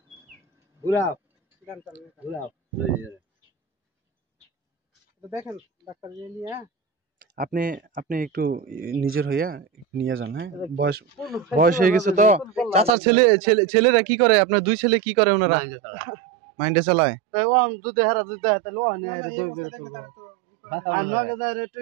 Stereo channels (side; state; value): left; drops out; at 12.9 s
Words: ঘুরাও ঘুরাও দেখেন ডাক্তার নিয়ে আপনি আপনি একটু নিজের হইয়া নিয়ে যান। হ্যাঁ, বয়স বয়স হয়ে গেছে তো। চাচার ছেলেরা কি করে, আপনার দুই ছেলে কি করে? ওনারা মাইন্ডে চালায়। তাই ও আম দুধে হারা দুধ দেয় তাহলে ও আনে আরে দুই বের তো আর নগে দারে